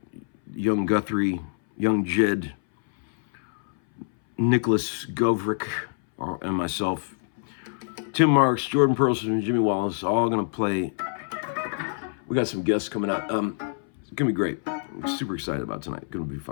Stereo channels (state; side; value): silent; right; 60 dB below the other